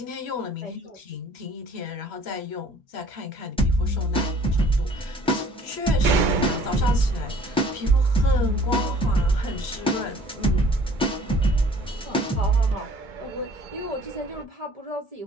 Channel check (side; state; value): both; normal; correlation 0.54